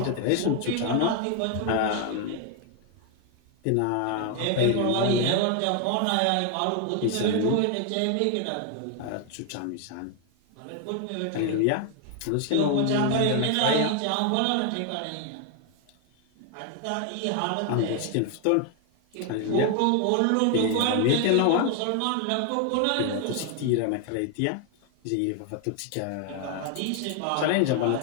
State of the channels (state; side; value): different; both; correlation 0.01